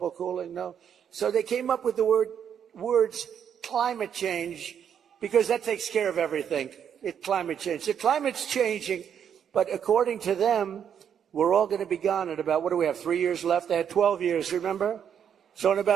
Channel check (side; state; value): left; quieter; 8.4 dB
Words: cooling. No. So they came up with the words climate change because that takes care of everything. Climate change. The climate's changing, but according to them, we're all going to be gone in about, what do we have, 3 years left? They had 12 years, remember? So in